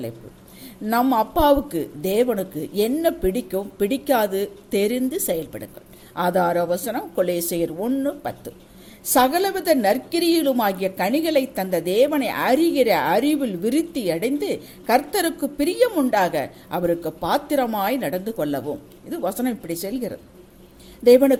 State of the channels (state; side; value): identical; both; correlation 1.00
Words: நம் அப்பாவுக்கு தேவனுக்கு என்ன பிடிக்கும் பிடிக்காது தெரிந்து செயல்படுங்கள். ஆதார வசனம் கொலேசியர் 1:10. சகலவித நற்கிரியிலுமாகிய கனிகளை தந்த தேவனை அறிகிற அறிவில் விருத்தி அடைந்து கர்த்தருக்கு பிரியம் உண்டாக அவருக்கு பாத்திரமாய் நடந்து கொள்ளவும். இது வசனம் இப்படி செல்கிறது.